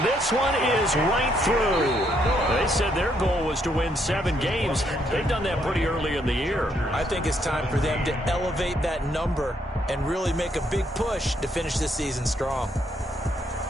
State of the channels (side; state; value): both; normal; correlation 0.73